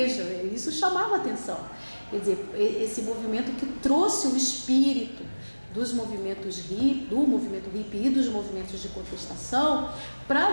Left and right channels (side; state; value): both; inverted; correlation -1.00